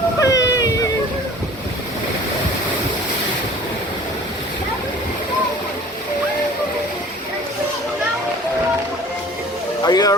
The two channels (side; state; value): both; normal; correlation 0.46